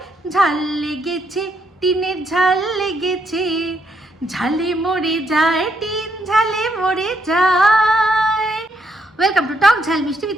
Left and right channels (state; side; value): normal; both; correlation 0.75